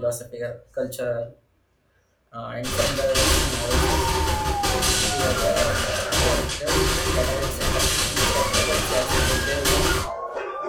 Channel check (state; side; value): identical; both; correlation 1.00